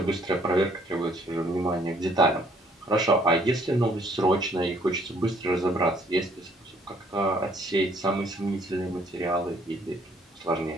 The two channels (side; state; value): both; normal; correlation 0.64